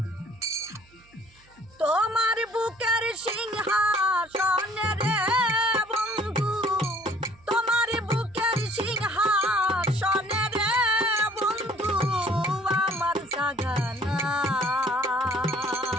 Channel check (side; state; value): right; noise; hum, 29 dB below the sound